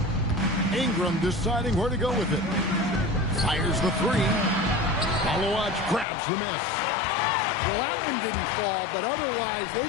Ingram deciding where to go with it. Fires the three. Malawach grabs the miss. Well, that one didn't fall, but otherwise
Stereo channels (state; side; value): drops out; right; at 6.1 s